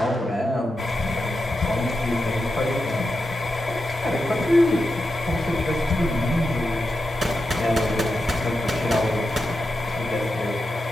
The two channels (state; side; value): normal; both; correlation 0.89